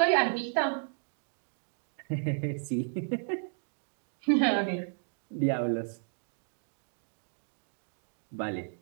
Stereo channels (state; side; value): silent; left; digital silence